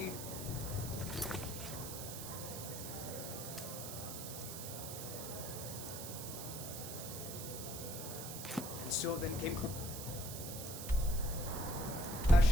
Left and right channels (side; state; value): right; noise; hiss, 7 dB below the sound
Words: so then came